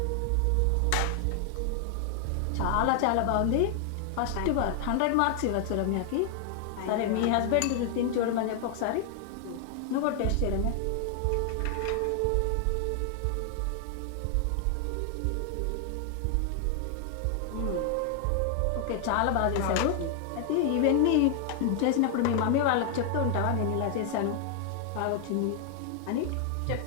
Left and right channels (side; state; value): both; different; correlation 0.00